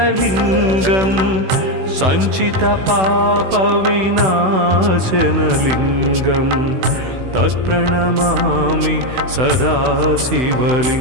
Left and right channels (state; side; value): late; left; 16 ms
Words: सञ्चितपापविनाशनलिङ्गं तत्प्रणमामि सदा